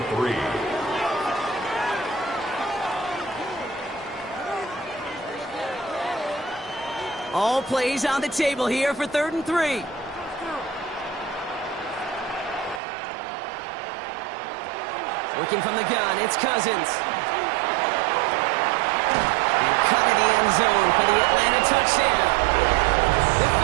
3. All plays on the table here for 3rd and 3. Working from the gun, it's Cousins. And cut in the end zone for the Atlanta touchdown. The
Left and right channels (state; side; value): drops out; left; at 12.8 s